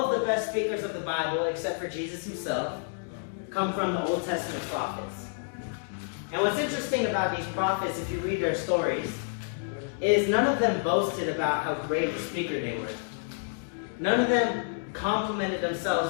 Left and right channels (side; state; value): right; silent; digital silence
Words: of the best speakers of the Bible, except for Jesus Himself, come from the Old Testament prophets. And what's interesting about these prophets, if you read their stories, is none of them boasted about how great a speaker they were. None of them complimented